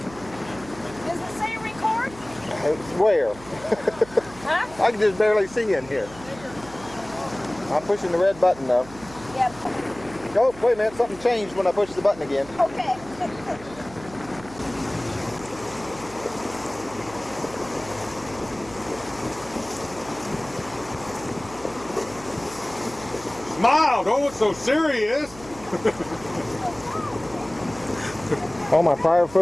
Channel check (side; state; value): right; noise; hum, 19 dB below the sound